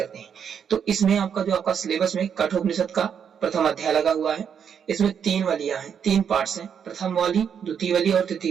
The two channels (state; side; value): quieter; left; 7.7 dB